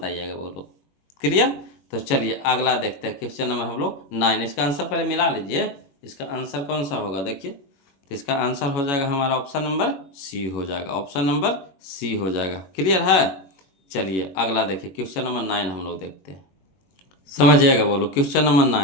बोलो। क्लियर। तो चलिए अगला देखते हैं क्वेश्चन नंबर हम लोग 9। इसका आंसर पहले मिला लीजिए, इसका आंसर कौन सा होगा देखिए। तो इसका आंसर हो जाएगा हमारा ऑप्शन नंबर सी हो जाएगा, ऑप्शन नंबर सी हो जाएगा। क्लियर है। चलिए अगला देखिए क्वेश्चन नंबर 9 हम लोग देखते हैं, समझिएगा बोलो। क्वेश्चन नंबर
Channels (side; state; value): right; late; 21 ms